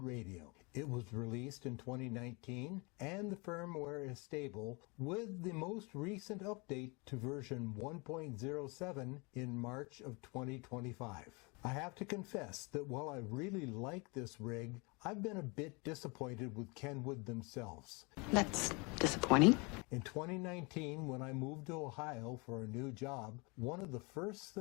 radio. It was released in 2019, and the firmware is stable, with the most recent update to version 1.07 in March of 2025. I have to confess that while I really like this rig, I've been a bit disappointed with Kenwood themselves. That's disappointing. In 2019, when I moved to Ohio for a new job, one of the first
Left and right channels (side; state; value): right; quieter; 29.2 dB